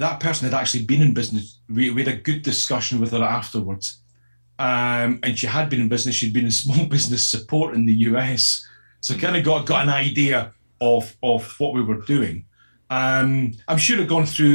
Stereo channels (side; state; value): both; inverted; correlation -1.00